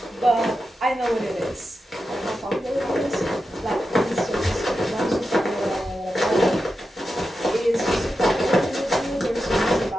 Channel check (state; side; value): normal; both; correlation 0.90